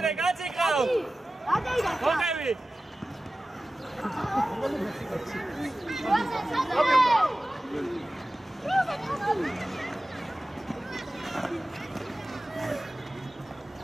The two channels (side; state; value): both; normal; correlation 0.96